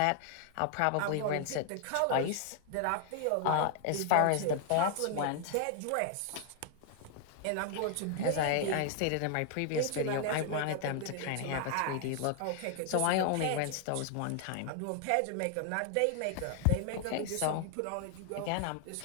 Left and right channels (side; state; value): both; different; correlation 0.00